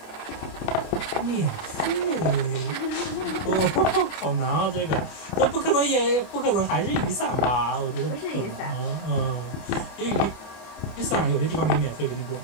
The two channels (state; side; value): late; right; 26 ms